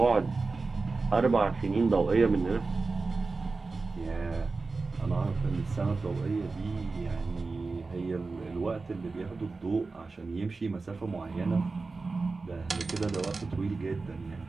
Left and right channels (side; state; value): left; quieter; 3.9 dB